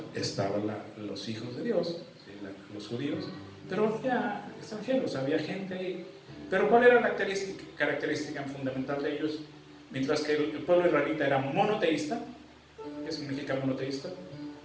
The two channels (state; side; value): identical; both; correlation 1.00